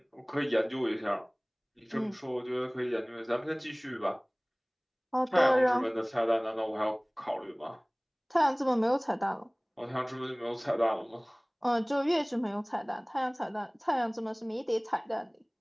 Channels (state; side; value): identical; both; correlation 1.00